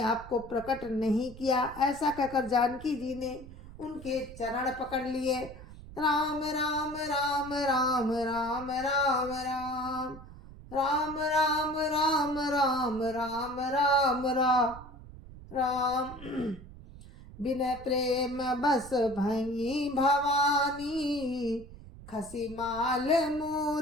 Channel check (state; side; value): noise; right; rumble, 16 dB below the sound